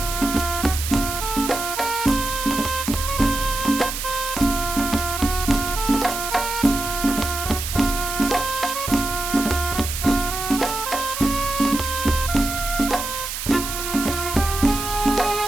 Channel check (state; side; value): noise; right; hiss, 5 dB below the sound